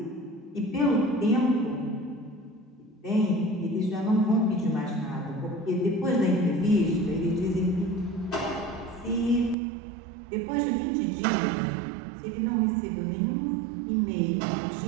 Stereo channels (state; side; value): drops out; left; at 9.6 s